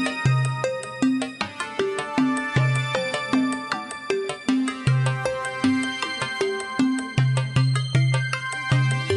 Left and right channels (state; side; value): identical; both; correlation 1.00